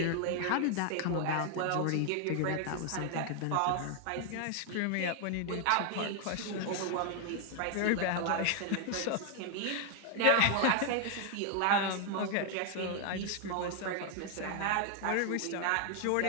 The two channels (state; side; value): different; both; correlation 0.00